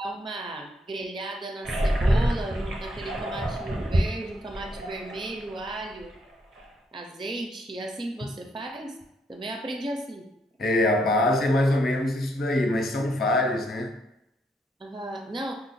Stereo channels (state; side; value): normal; both; correlation 0.74